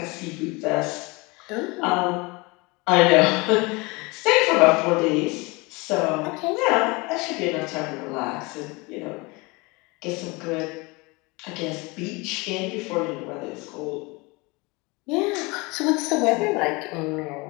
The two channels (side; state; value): right; quieter; 25.8 dB